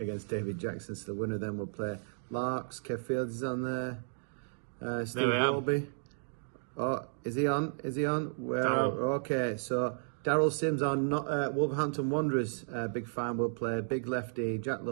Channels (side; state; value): left; silent; digital silence